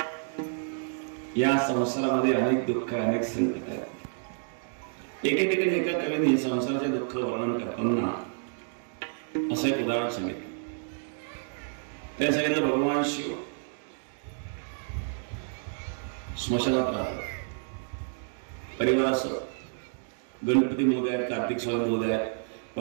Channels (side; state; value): left; silent; 58 dB below the other